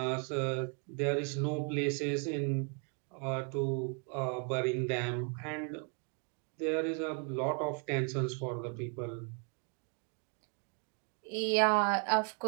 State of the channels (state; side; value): quieter; left; 39.9 dB